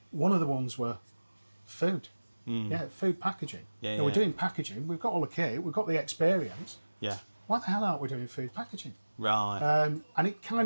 one of the ones were food. Food packaging. We're doing packaging. We've got all the kit. We've got the experience. Yeah. Why the hell aren't we doing food packaging? Right. And it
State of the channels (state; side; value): inverted; both; correlation -1.00